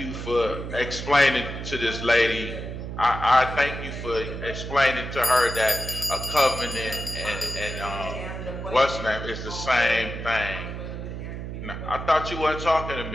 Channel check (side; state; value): right; noise; hum, 7 dB below the sound